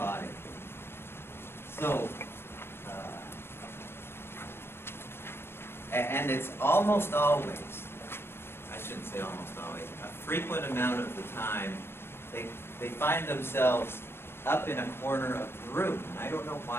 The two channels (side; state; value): right; late; 0.12 ms